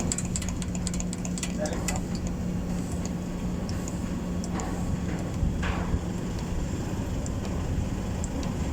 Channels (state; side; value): identical; both; correlation 1.00